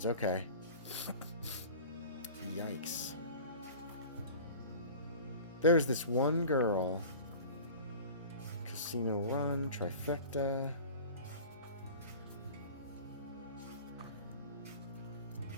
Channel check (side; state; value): both; inverted; correlation -0.40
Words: okay. Yikes. There's this one girl. Casino Run, Trifecta.